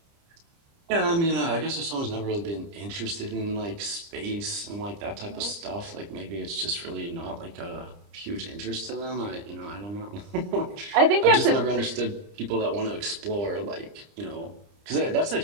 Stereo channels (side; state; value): left; late; 30 ms